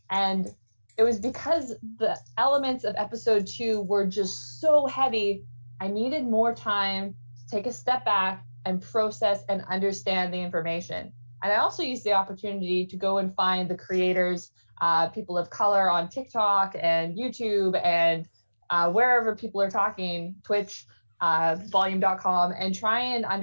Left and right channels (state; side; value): inverted; both; correlation -1.00